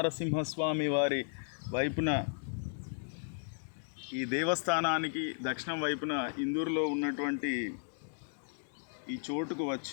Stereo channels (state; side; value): silent; right; digital silence